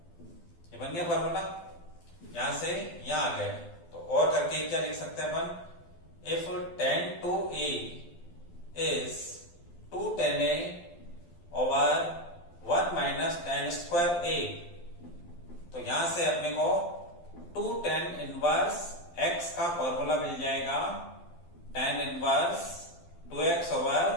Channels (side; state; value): right; late; 12 ms